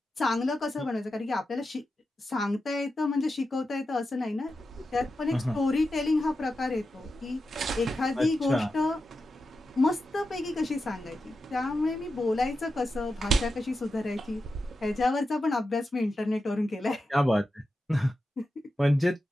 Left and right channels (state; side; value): normal; both; correlation 0.90